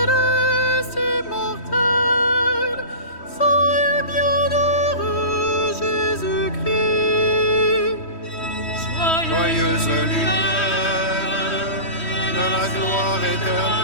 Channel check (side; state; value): right; late; 3.1 ms